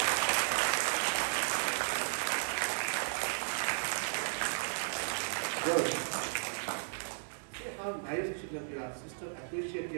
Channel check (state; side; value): silent; left; digital silence